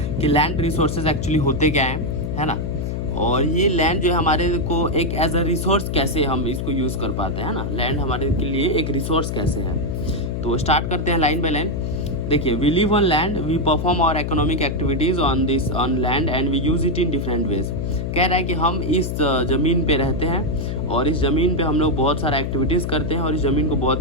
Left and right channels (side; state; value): left; noise; hum, 2 dB below the sound